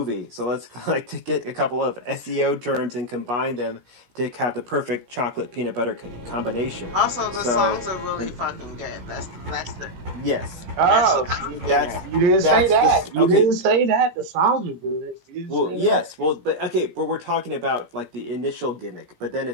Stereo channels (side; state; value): left; late; 17 ms